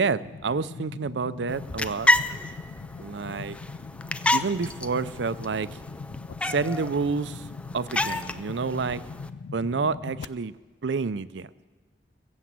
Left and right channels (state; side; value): normal; both; correlation 0.27